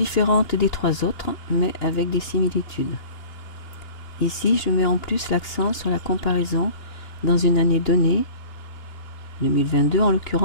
des 3 autres, mais avec des similitudes. Ici, je mets en plus l'accent sur la comparaison dans une année donnée, 2022 en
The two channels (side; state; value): right; late; 2.9 ms